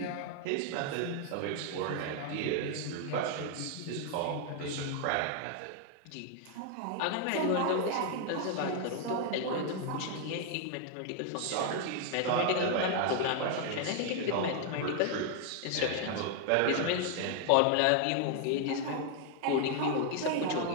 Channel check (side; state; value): both; different; correlation 0.00